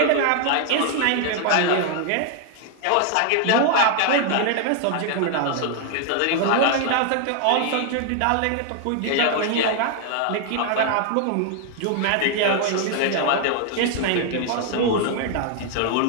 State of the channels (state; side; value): different; both; correlation 0.00